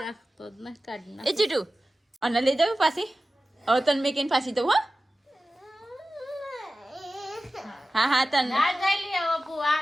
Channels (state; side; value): normal; both; correlation 0.95